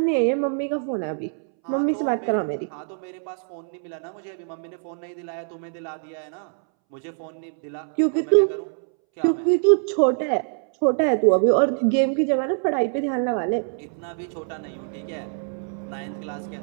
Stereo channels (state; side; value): silent; left; 62 dB below the other